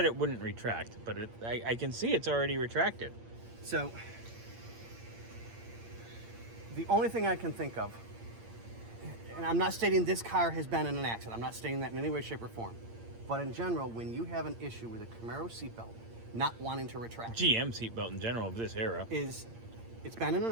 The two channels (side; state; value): left; late; 8.7 ms